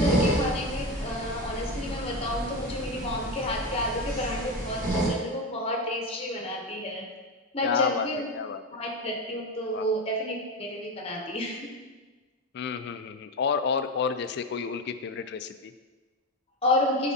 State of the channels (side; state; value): both; normal; correlation 0.18